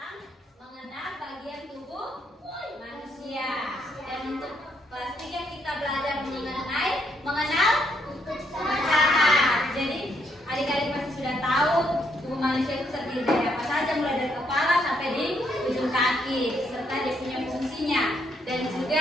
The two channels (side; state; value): both; normal; correlation 0.74